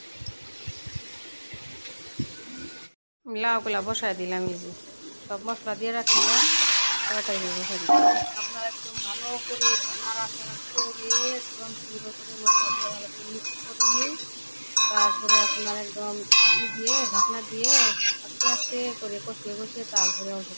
লাউগুলা বসায় দিলাম। এই যে সব মশলা দিয়ে রাখলাম, তরকারি বসাই দিলাম। আপনারা একদম ভালো করে নাড়াচাড়া করে একদম সুন্দর করে মশলা দিয়ে ভালো করে মিক্স করে তারপরে আপনার একদম দিয়ে ঢাকনা দিয়ে আস্তে আস্তে করে কষিয়ে কষিয়ে তারপরে অল্প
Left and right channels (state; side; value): inverted; both; correlation -1.00